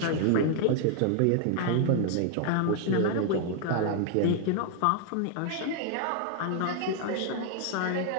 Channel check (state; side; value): different; both; correlation 0.00